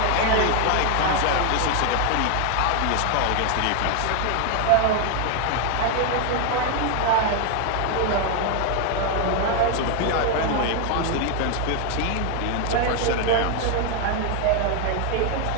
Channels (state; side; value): different; both; correlation 0.00